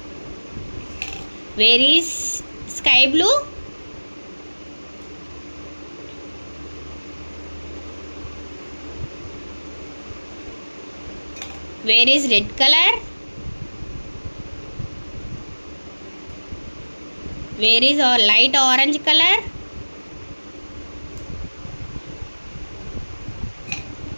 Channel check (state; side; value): inverted; both; correlation -1.00